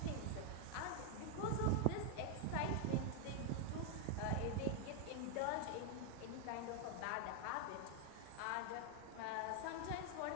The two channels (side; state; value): both; different; correlation 0.00